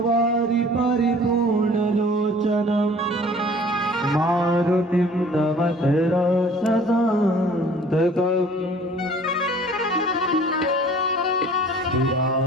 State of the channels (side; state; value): both; normal; correlation 0.50